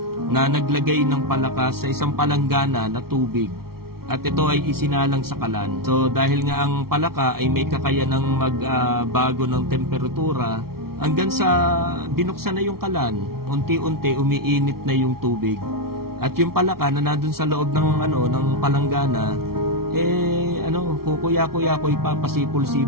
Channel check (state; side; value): late; left; 0.94 ms